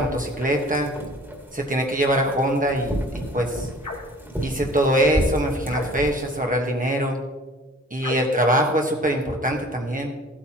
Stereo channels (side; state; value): both; normal; correlation 0.48